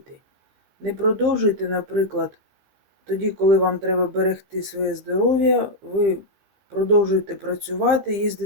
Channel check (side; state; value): left; late; 15 ms